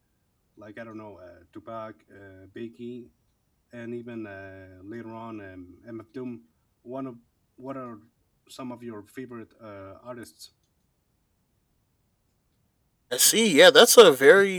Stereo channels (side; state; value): both; identical; correlation 1.00